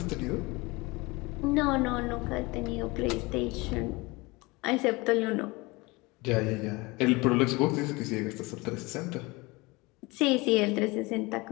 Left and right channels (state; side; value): quieter; right; 24.1 dB